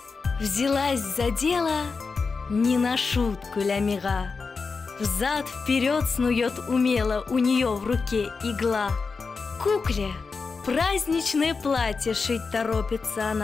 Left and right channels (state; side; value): quieter; right; 4.7 dB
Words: взялась за дело не на шутку Ля-Мира. Взад-вперед снует умело, у нее в руке игла. Кукле праздничное платье шить торопится